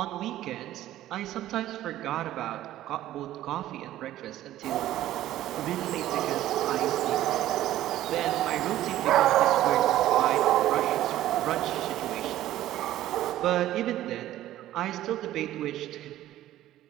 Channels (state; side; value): quieter; left; 13.8 dB